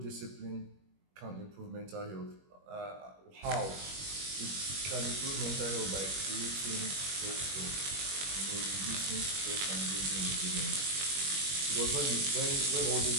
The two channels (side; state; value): left; late; 21 ms